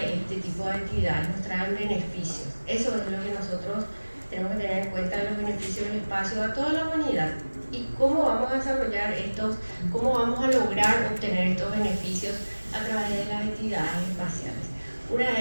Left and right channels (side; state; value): both; inverted; correlation -1.00